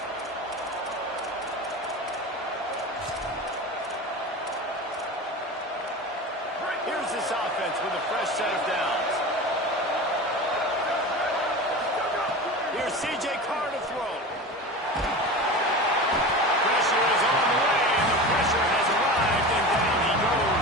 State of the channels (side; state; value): both; normal; correlation 0.30